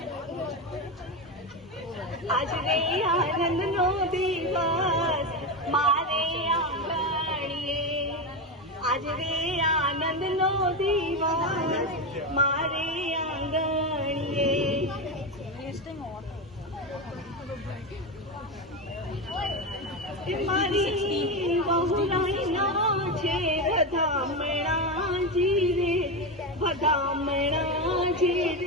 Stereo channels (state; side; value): normal; both; correlation 0.15